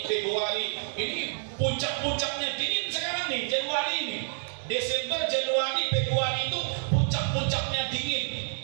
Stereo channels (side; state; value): left; silent; digital silence